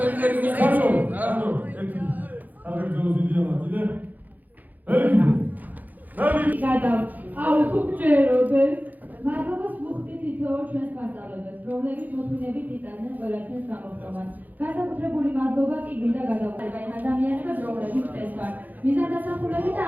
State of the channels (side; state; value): left; late; 0.082 ms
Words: აუ ხუჭეროდეს მადლობას ვუხდით თითოეულ ჩვენს მასწავლებლებს, რომლებიც მოთმინებით იტანენ ყველა ჩვენს გამოხდომას. განსაკუთრებული მადლობა კი გვინდა გადავუხადოთ ადამიანებს, რომლებიც წესვარ, მიზანდასახულები და